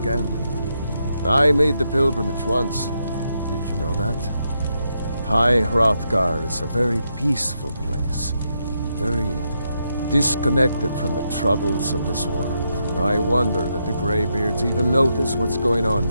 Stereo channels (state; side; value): inverted; both; correlation -0.81